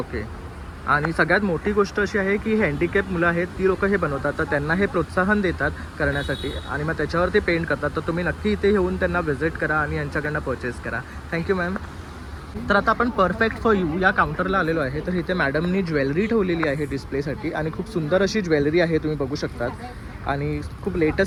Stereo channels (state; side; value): identical; both; correlation 1.00